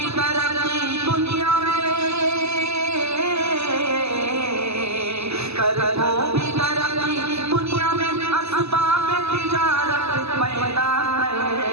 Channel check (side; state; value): left; late; 0.79 ms